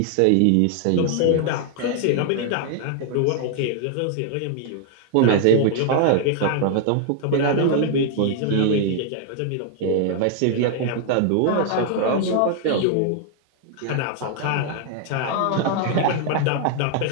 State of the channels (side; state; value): both; different; correlation 0.00